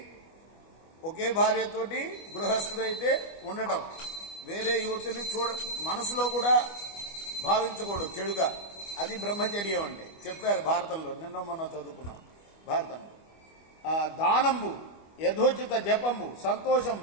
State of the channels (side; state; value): right; late; 25 ms